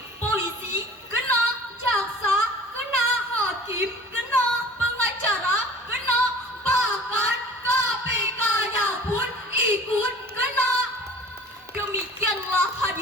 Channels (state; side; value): normal; both; correlation 0.45